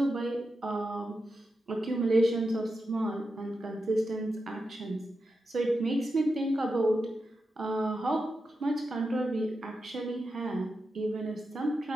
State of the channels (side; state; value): both; normal; correlation 0.89